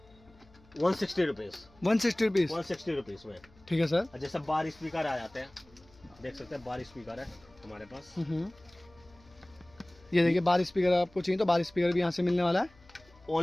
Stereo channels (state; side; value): noise; left; hum, 27 dB below the sound